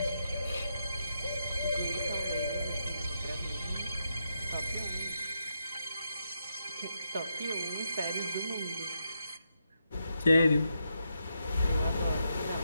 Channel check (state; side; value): inverted; both; correlation -0.82